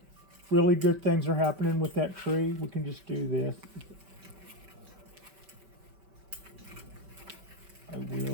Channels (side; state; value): left; late; 5.2 ms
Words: really good things are happening with that tree. We can just do this. I